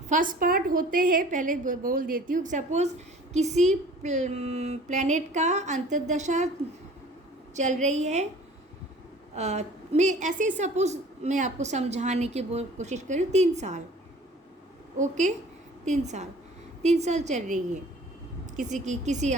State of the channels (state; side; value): normal; both; correlation 0.48